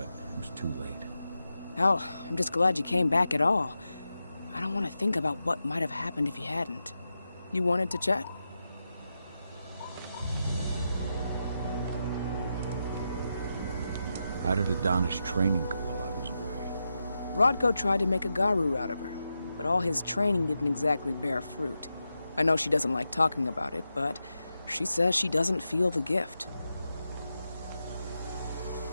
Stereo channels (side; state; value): both; inverted; correlation -0.88